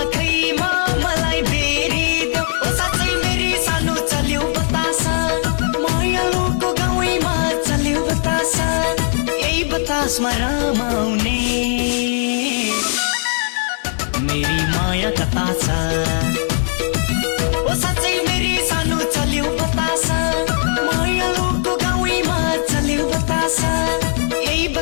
मलाई फेरिदेऊ ओ साँच्चै फेरि सानो चल्यो बतासा मायालुको गाउँमा चल्यो बतासा यही बतासमा रमाउने मेरी माया कता छ ओ साँच्चै फेरि सानो चल्यो बतासा मायालुको गाउँमा चल्यो बतासा यही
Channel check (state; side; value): silent; right; 59 dB below the other